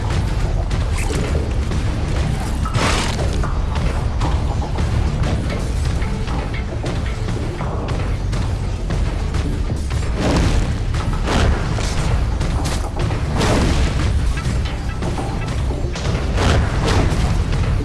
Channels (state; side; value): identical; both; correlation 1.00